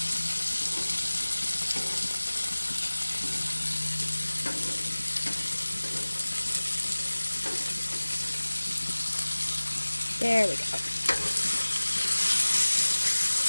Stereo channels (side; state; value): both; inverted; correlation -1.00